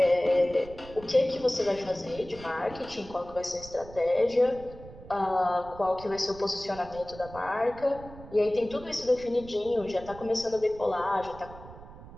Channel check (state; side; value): noise; right; rumble, 17 dB below the sound